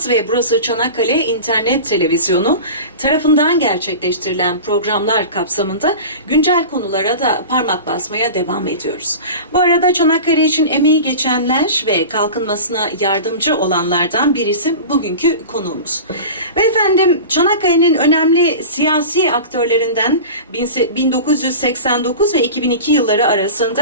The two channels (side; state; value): both; inverted; correlation -0.32